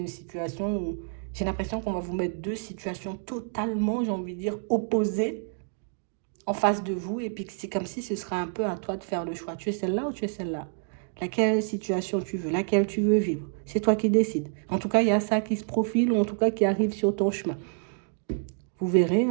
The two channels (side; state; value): left; silent; 59 dB below the other